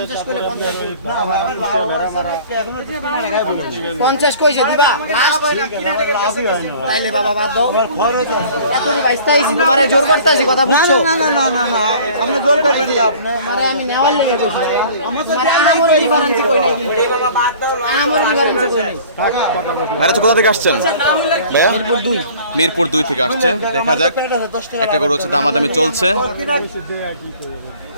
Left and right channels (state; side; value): inverted; both; correlation -0.48